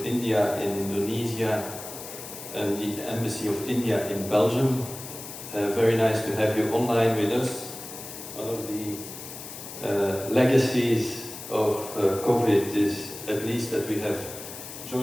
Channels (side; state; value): left; noise; hiss, 11 dB below the sound